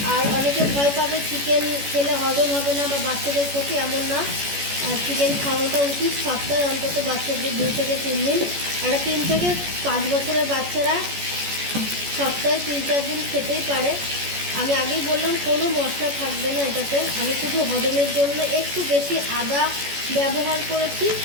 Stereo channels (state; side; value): late; left; 14 ms